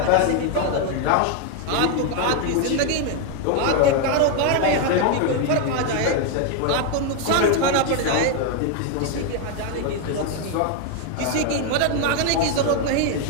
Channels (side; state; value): both; different; correlation 0.01